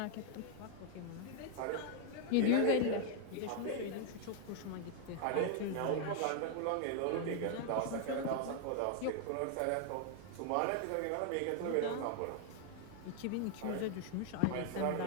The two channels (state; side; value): different; both; correlation 0.00